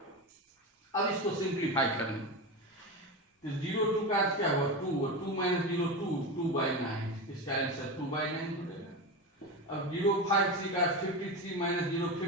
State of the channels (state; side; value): normal; both; correlation 0.20